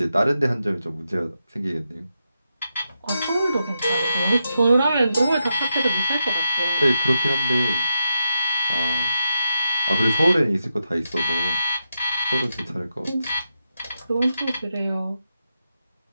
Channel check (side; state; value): both; inverted; correlation -0.85